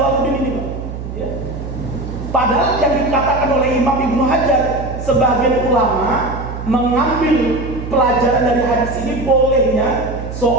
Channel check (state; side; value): noise; right; hum, 8 dB below the sound